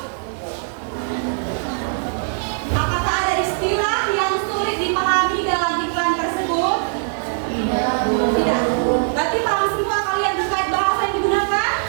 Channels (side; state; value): left; silent; digital silence